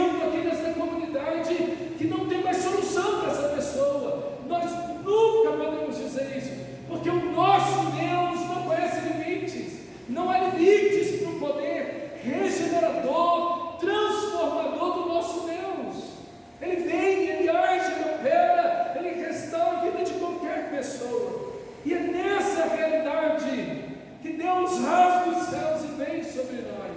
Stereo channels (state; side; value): identical; both; correlation 1.00